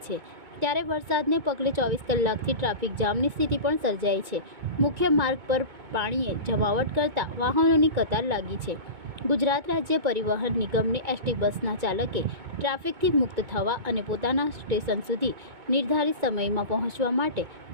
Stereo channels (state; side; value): late; left; 2.2 ms